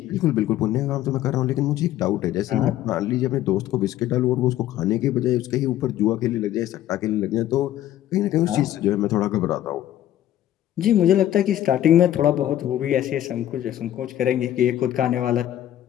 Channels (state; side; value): quieter; right; 12.5 dB